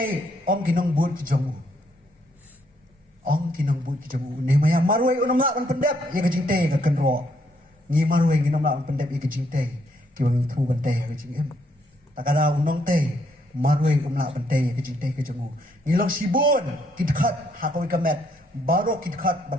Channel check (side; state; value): both; normal; correlation 0.72